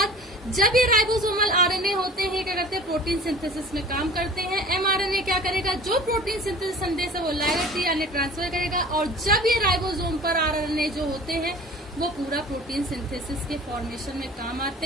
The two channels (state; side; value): normal; both; correlation 0.43